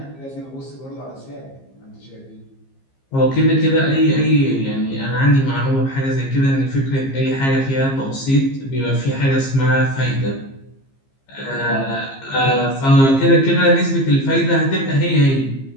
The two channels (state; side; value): late; right; 15 ms